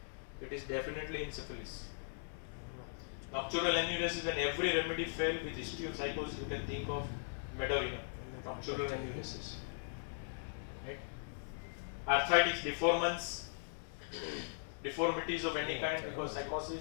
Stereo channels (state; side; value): silent; right; 52 dB below the other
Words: it is definitely in syphilis. Nocturnal enuresis, when every remedy failed with history of psychosis, you can think of Meadorinum, nocturnal enuresis. Right? Arthritis, deformities of any kind because